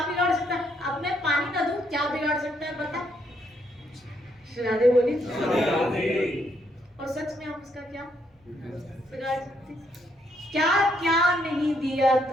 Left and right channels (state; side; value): normal; both; correlation 0.73